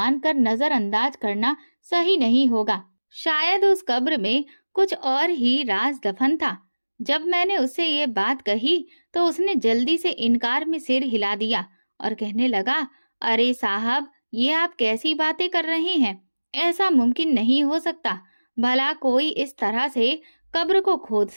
नजरअंदाज करना सही नहीं होगा। शायद उस कब्र में कुछ और ही राज दफन था। जब मैंने उससे ये बात कही तो उसने जल्दी से इनकार में सिर हिला दिया और कहने लगा, अरे साहब, ये आप कैसी बातें कर रहे हैं? ऐसा मुमकिन नहीं हो सकता। भला कोई इस तरह से कब्र को खोद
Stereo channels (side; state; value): both; inverted; correlation -1.00